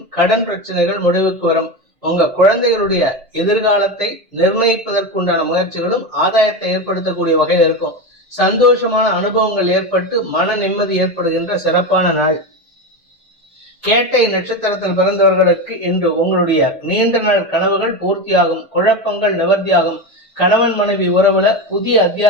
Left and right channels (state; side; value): normal; both; correlation 0.19